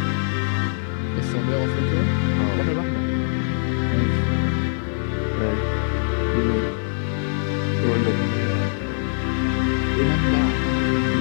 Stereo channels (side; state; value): right; silent; digital silence